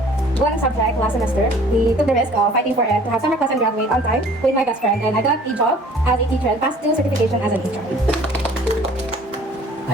one subject last semester, we took the risk of fighting for it to have summer class and graduate on time with my best friend. And I got a job as a teacher and passed 2 certification as an HR.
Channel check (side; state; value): both; normal; correlation 0.51